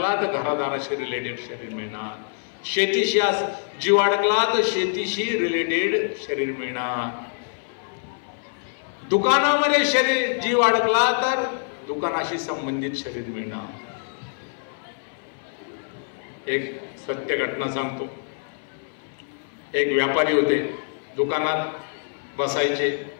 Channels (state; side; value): silent; right; 57 dB below the other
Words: तर घरादाराशी रिलेटेड शरीर मिळणार. शेतीशी जीव अडकला तर शेतीशी रिलेटेड शरीर मिळणार. दुकानामध्ये शरीर जीव अडकला तर दुकानाशी संबंधित शरीर मिळणार. एक सत्य घटना सांगतो. एक व्यापारी होते, दुकानात बसायचे,